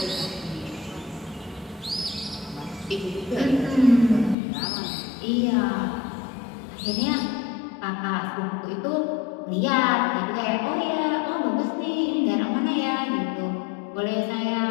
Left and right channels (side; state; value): right; drops out; at 4.4 s